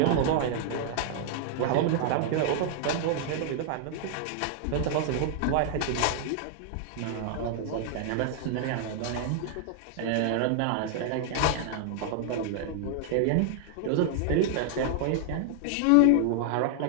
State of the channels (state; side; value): different; both; correlation 0.00